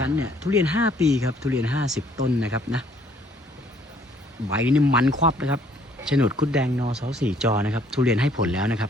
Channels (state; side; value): normal; both; correlation 0.62